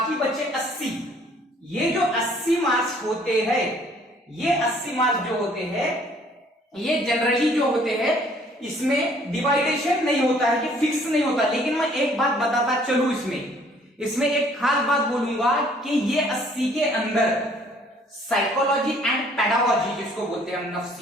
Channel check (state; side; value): normal; both; correlation 0.59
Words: बचे 80। ये जो 80 मार्क्स होते हैं, ये 80 मार्क्स जो होते हैं ये जनरली जो होते हैं इसमें डिवाइडेशन नहीं होता है कि फिक्स नहीं होता। लेकिन मैं एक बात बताता चलूं, इसमें एक खास बात बोलूंगा कि ये 80 के अंदर साइकोलॉजी एंड पेडागोजी जिसको बोलते हैं हम,